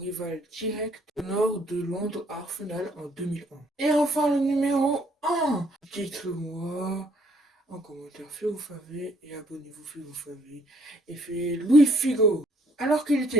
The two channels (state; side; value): normal; both; correlation 0.66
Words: direct au nord de Londres à Arsenal en 2001. Et enfin le numéro 1, dites-le-moi en commentaire si vous savez et abonnez-vous si vous savez. Et c'est Luis Figo. Alors qu'il